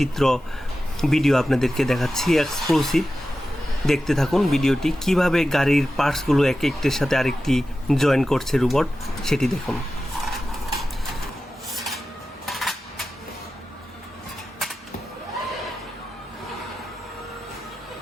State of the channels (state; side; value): normal; both; correlation 0.93